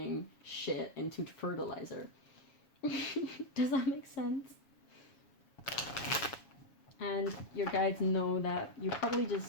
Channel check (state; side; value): late; right; 7.2 ms